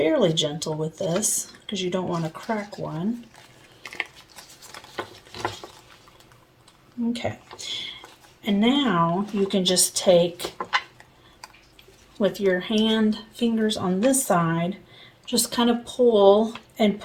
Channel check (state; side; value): identical; both; correlation 1.00